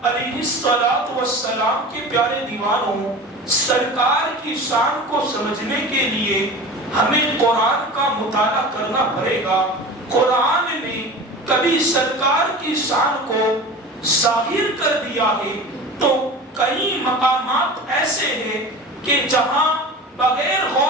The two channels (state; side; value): normal; both; correlation 0.34